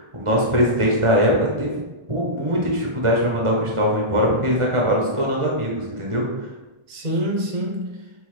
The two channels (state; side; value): late; left; 1.4 ms